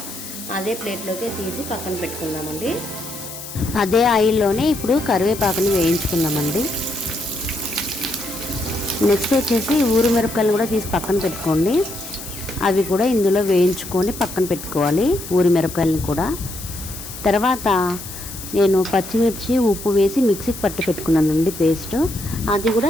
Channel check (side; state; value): left; noise; hiss, 12 dB below the sound